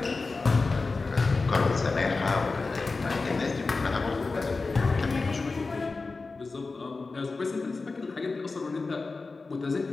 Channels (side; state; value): right; quieter; 3.9 dB